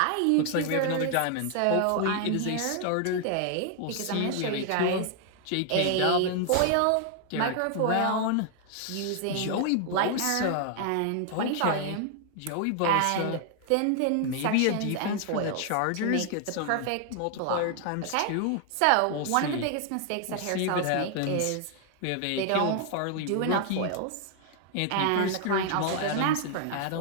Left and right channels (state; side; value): different; both; correlation 0.00